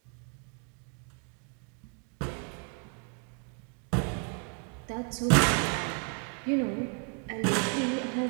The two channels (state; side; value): quieter; left; 37.4 dB